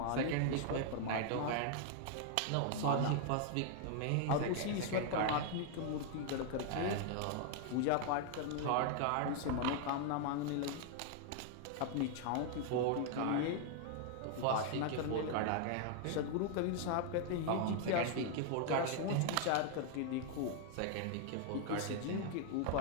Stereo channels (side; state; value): both; different; correlation 0.00